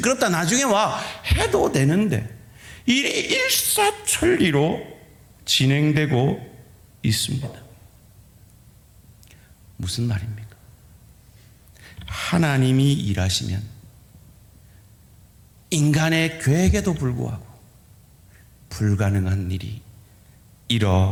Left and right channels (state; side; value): identical; both; correlation 1.00